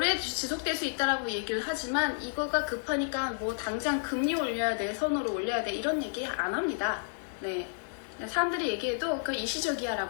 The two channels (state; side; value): silent; right; digital silence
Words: 지속될 수 있다라고 얘기를 하지만 이거가 급하니까 당장 금리 올려야 돼, 선호를 올려야 돼 이런 얘기 안 합니다. 네, 사람들이 얘기해도 그